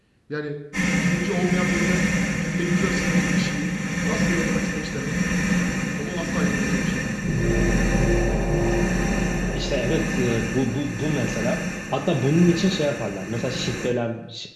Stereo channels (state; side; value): identical; both; correlation 1.00